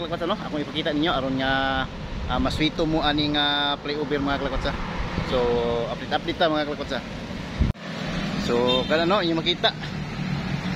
kalakot, no? Ako ipakita ninyo aron nga maswito mo aning flyover mga kalakot. So update ta mga kalakot. So kana, no, inyo makita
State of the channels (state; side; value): identical; both; correlation 1.00